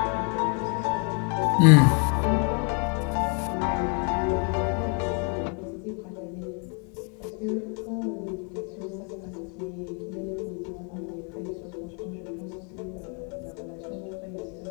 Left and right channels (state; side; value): quieter; right; 37.1 dB